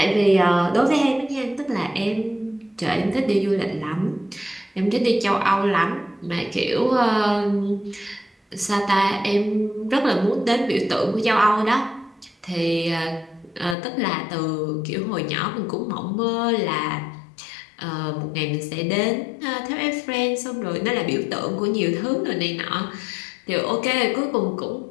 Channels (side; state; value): right; drops out; at 13.8 s